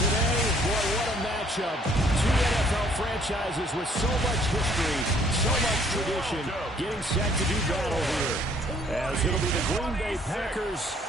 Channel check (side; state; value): both; normal; correlation 0.61